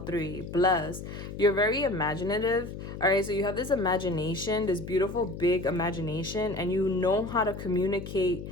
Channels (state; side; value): noise; left; hum, 9 dB below the sound